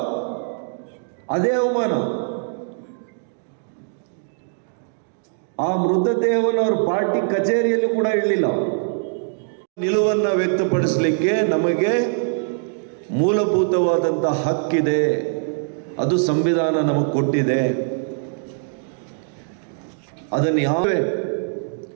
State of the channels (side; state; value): left; silent; digital silence